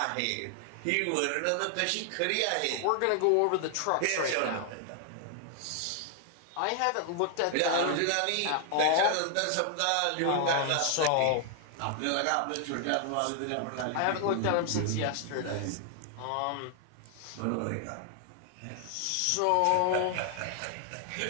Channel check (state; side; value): different; both; correlation 0.00